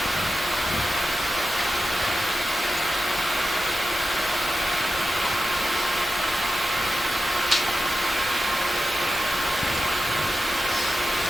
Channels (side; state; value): both; normal; correlation 0.91